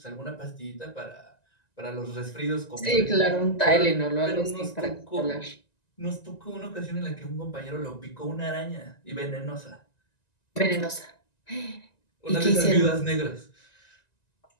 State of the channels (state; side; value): late; right; 1.9 ms